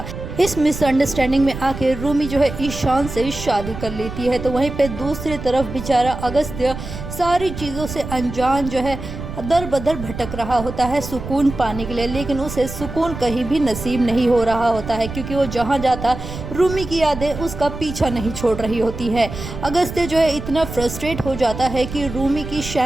इस मिसअंडरस्टैंडिंग में आके रूमी जो है ईशान से शादी कर लेती है। तो वहीं पे दूसरी तरफ बेचारा अगस्त्य सारी चीज़ों से अनजान जो है दर बदर भटक रहा होता है सुकून पाने के लिए, लेकिन उसे सुकून कहीं भी नसीब नहीं हो रहा होता है, क्योंकि वो जहाँ जाता रूमी की यादें उसका पीछा नहीं छोड़ रही होती है। अगस्त्य जो है इतना फ्रस्ट्रेट हो जाता है कि रूमी की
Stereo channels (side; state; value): right; noise; rumble, 9 dB below the sound